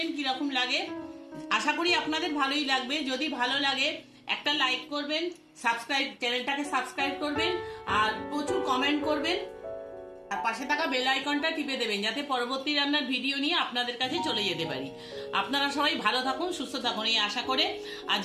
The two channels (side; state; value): both; identical; correlation 1.00